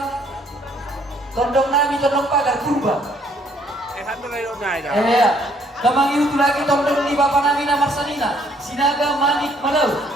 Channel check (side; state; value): both; normal; correlation 0.65